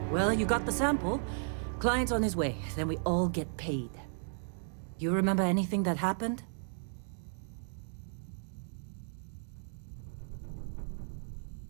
Well, you got the sample. Client's on his way, then we all get paid. You remember anything that happened?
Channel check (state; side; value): silent; left; digital silence